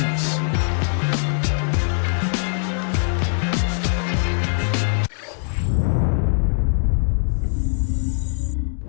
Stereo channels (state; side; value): silent; right; digital silence